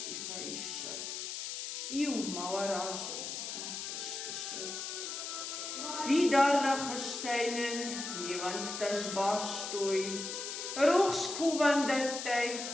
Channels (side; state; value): left; noise; hiss, 5 dB below the sound